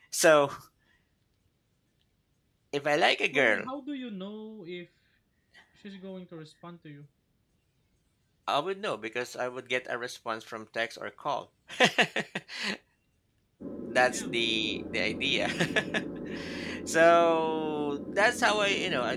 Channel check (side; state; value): both; identical; correlation 1.00